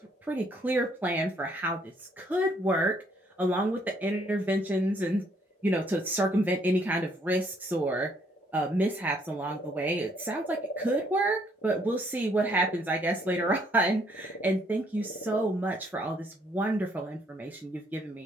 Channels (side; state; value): both; normal; correlation 0.67